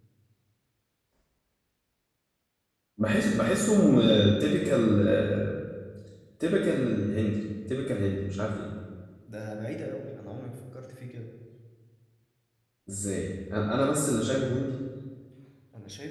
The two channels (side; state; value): both; identical; correlation 1.00